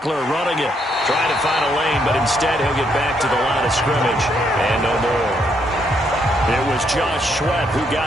running it. Trying to find a lane, but instead he'll get back to the line of scrimmage. And no more. It was Josh Sweat who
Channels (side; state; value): both; normal; correlation 0.74